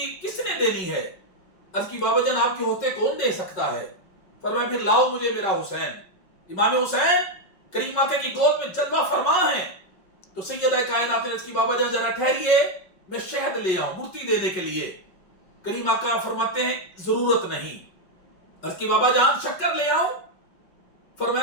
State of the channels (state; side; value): late; right; 5.4 ms